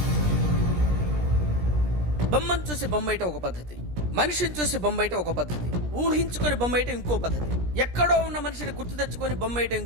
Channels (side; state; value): left; late; 17 ms